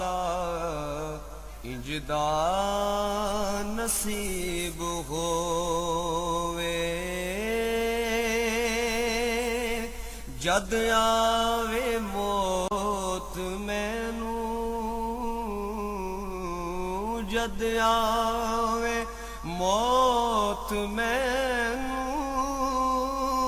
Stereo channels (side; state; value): both; identical; correlation 1.00